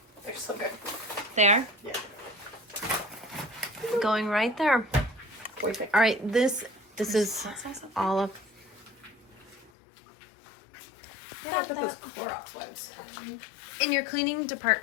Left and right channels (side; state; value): right; drops out; at 9.7 s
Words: They're so good. They are? Yeah. Going right there. Wait, All right, this is all of. I put those Clorox wipes. In your cleaning